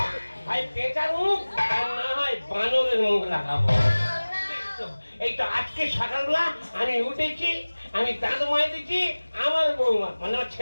ভাই পেঁচার মুখ আর না হয় বানরের মুখ লাগাবো। এই তো আজকে সকালবেলা আমি উঠেছি, আমি দাঁত মাইতেছি, আমার বৌমা মানে আমার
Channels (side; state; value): both; inverted; correlation -1.00